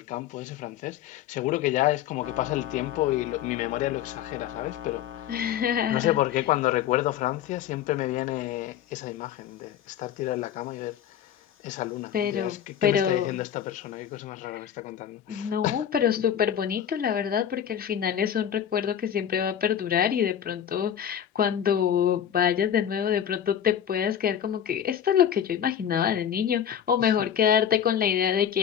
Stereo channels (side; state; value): right; quieter; 9.6 dB